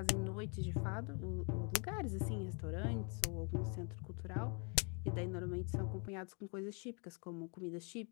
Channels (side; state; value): right; quieter; 36.1 dB